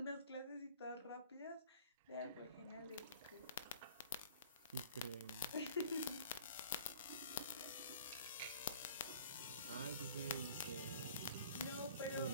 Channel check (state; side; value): inverted; both; correlation -0.49